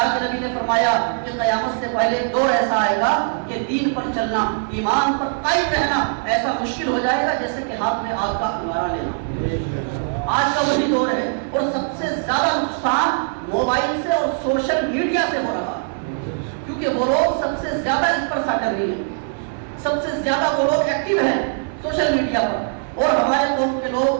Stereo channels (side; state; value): left; silent; digital silence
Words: کے نبی نے فرمایا کہ قیامت سے پہلے دور ایسا آئے گا کہ دین پر چلنا, ایمان پر قائم رہنا ایسا مشکل ہو جائے گا جیسے کہ ہاتھ میں آگ کا انگارہ لینا. آج کا وہی دور ہے اور سب سے زیادہ نقصان موبائل سے اور سوشل میڈیا سے ہو رہا ہے, کیونکہ وہ لوگ سب سے زیادہ اس پر سا کر رہی ہیں, سب سے زیادہ وہ لوگ ایکٹیو ہیں سوشل میڈیا پر. اور ہمارے قوم کے